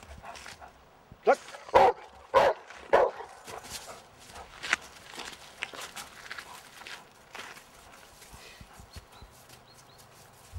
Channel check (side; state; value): both; identical; correlation 1.00